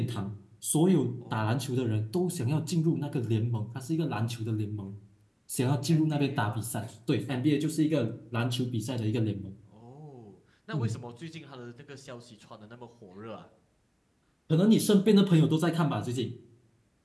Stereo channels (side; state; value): both; identical; correlation 1.00